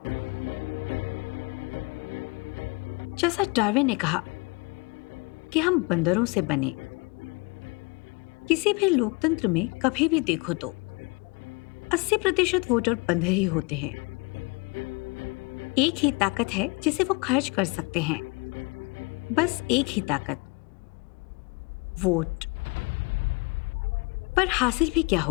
जैसा डार्विन ने कहा कि हम बंदरों से बने। किसी भी लोकतंत्र में कभी भी देखो तो 80% वोटर बंदर ही होते हैं। एक ही ताकत है जिसे वो खर्च कर सकते हैं, बस एक ही ताकत, वोट। पर हासिल भी क्या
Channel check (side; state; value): right; quieter; 29.0 dB